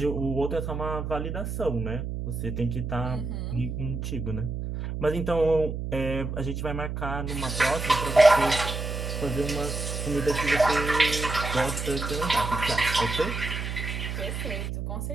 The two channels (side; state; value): right; noise; hum, 4 dB below the sound